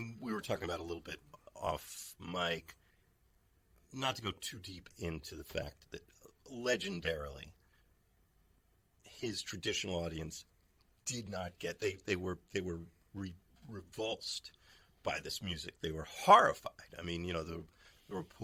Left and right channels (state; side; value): identical; both; correlation 1.00